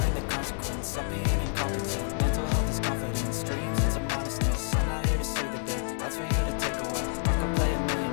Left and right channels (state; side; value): silent; right; digital silence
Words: the consequence of being incompetent. Mental health is confidence, dreams into modestness. I'm not here to save the day, that's for you to take away. I could play a